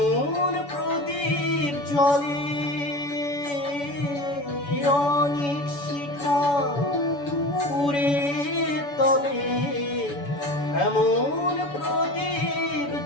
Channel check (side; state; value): right; late; 7.0 ms